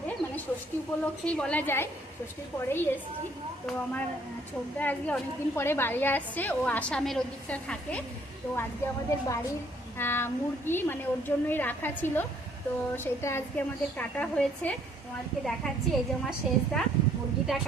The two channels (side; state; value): both; normal; correlation 0.64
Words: মানে ষষ্ঠী উপলক্ষেই বলা যায়, ষষ্ঠীর পরেই এসেছি। তো আমার ছোটদা আজকে অনেকদিন পরে বাড়ি আসছে, ও আসামের ওদিকটা থাকে। তো আজকে আমাদের বাড়ির মুরগি মানে ওর জন্যই রাখা ছিল, তো সেটা আজকে আমাদের কাটা হয়েছে। তোমাদেরকে দেখাচ্ছি, এই যে আমার শেষদা মুরগিটা